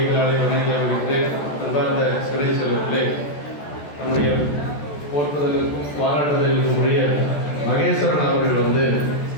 வணங்கி வருகின்றேன். அன்பார்ந்த சிறை செல்வர்களே, நம்முடைய போற்றுதலுக்கும் பாராட்டுதலுக்கும் உரிய மகேஸ்வரன் அவர்கள்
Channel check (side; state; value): right; late; 14 ms